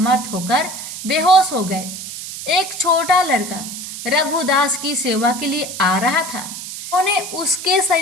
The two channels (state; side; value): noise; right; hiss, 9 dB below the sound